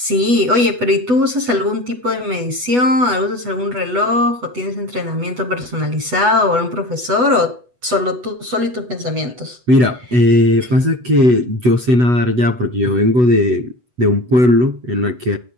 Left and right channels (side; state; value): left; late; 8.1 ms